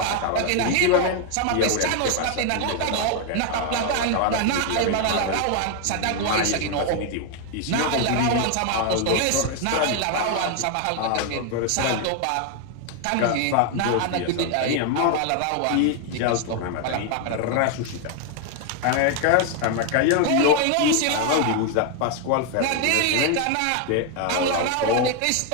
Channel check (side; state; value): both; different; correlation 0.01